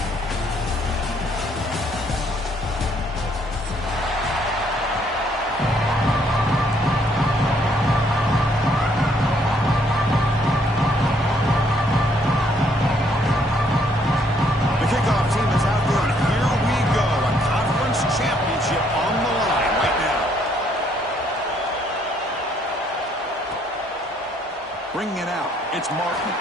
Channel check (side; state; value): both; normal; correlation 0.68